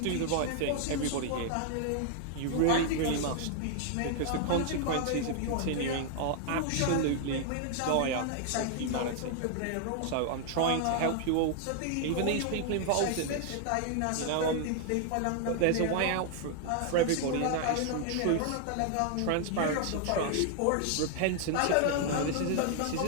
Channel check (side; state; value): both; different; correlation 0.00